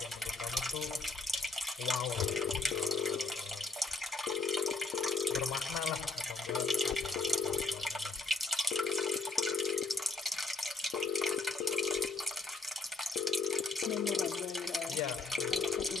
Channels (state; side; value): quieter; right; 3.7 dB